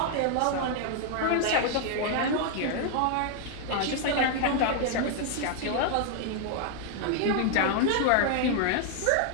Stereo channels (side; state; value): both; different; correlation 0.00